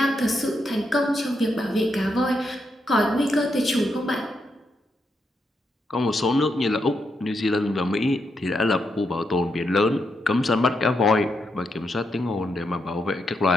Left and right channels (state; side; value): normal; both; correlation 0.82